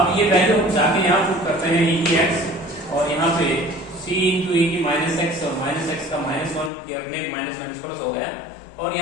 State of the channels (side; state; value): right; drops out; at 6.7 s